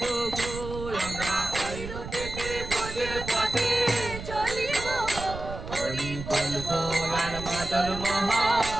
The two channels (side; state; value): right; noise; rumble, 9 dB below the sound